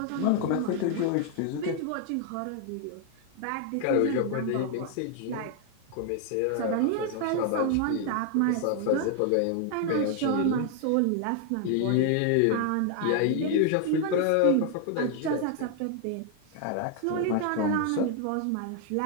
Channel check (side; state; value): both; different; correlation 0.00